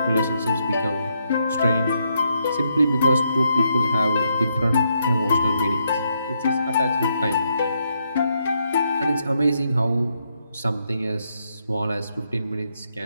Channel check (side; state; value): both; inverted; correlation -0.79